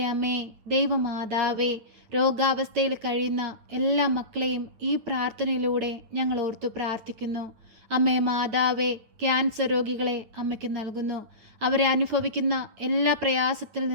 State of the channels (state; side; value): late; left; 9.2 ms